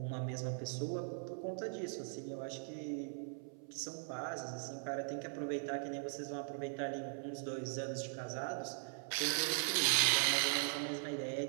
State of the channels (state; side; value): silent; left; 51 dB below the other